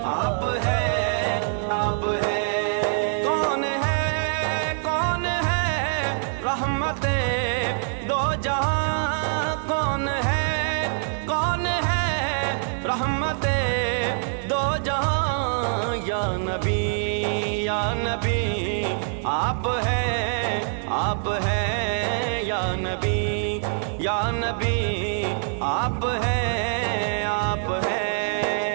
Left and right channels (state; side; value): silent; left; digital silence